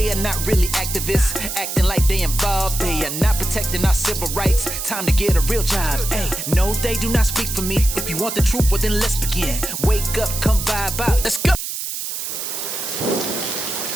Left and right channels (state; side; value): noise; right; hiss, 5 dB below the sound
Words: are not really activists, acting like they involved. They are not protecting our civil rights. Time to get a real job. Hey, no, they do not speak for me. If you want the truth, well then let's begin. Wake up, come vibe out, let's go.